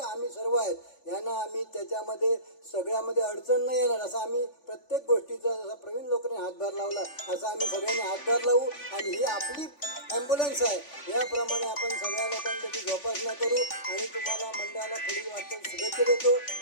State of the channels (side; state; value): right; late; 3.5 ms